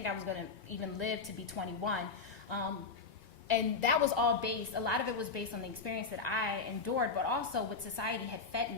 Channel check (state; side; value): quieter; right; 4.6 dB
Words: I was going to even live to be 21. And that was all based, a lot of it was based on the experience that I endured, but also what society had fed